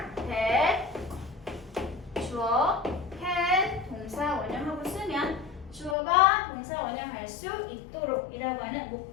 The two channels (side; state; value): right; drops out; at 6.0 s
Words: that, 주어, can, 동사 원형하고 쓰면 주어가 동사 원형할 수 있도록 이라고 하는